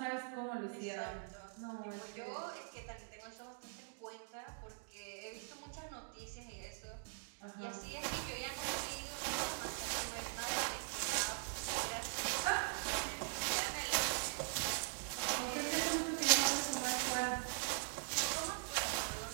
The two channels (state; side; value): silent; left; digital silence